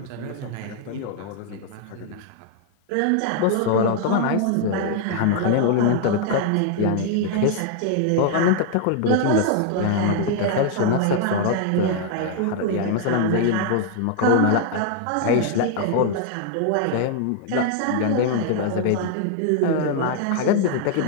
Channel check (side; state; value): both; different; correlation 0.00